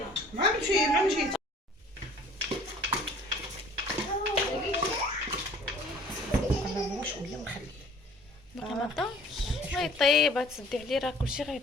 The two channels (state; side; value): normal; both; correlation 0.51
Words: مع مشيت. شويه ونخليه. باقي ما طابش. غيطيب تسدي عليه راه كلشي